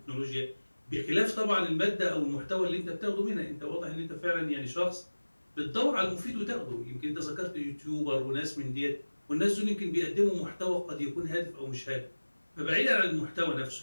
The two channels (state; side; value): inverted; both; correlation -1.00